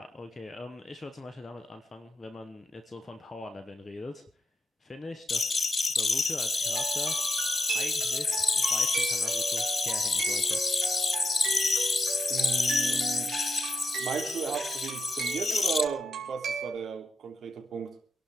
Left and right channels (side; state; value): both; normal; correlation 0.85